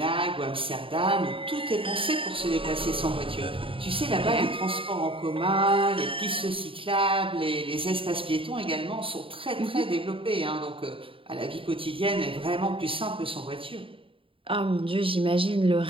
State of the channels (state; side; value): late; left; 0.26 ms